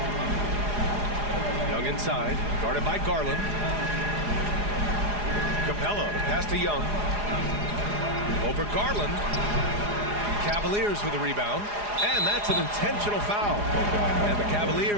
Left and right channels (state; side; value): late; left; 4.9 ms